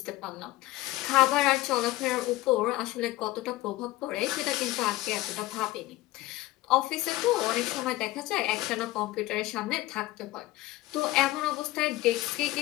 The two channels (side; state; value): right; quieter; 18.0 dB